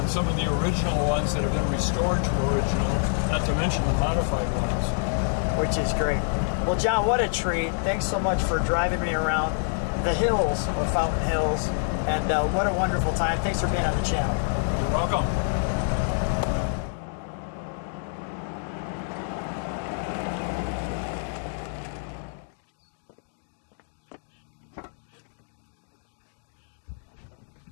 some of the original ones that have been restored to original, not to mention the modified ones. Which is great. Well, John, what a treat. Thanks so much for driving me around the hills of Fountain Hills. And what a wonderful time. Thanks for being on the channel. You're welcome.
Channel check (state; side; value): silent; right; digital silence